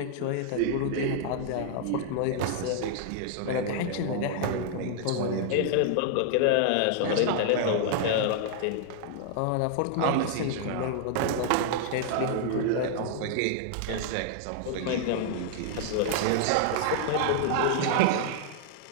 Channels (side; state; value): both; different; correlation -0.01